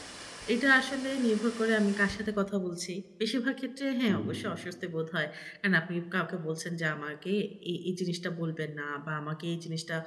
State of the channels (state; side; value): identical; both; correlation 1.00